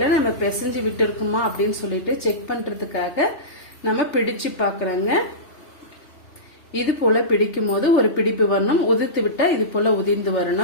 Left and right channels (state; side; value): late; right; 3.3 ms